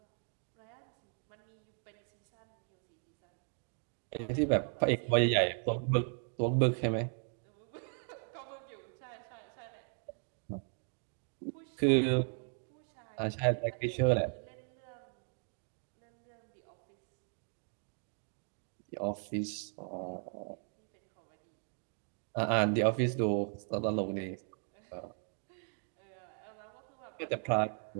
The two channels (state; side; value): silent; left; 53 dB below the other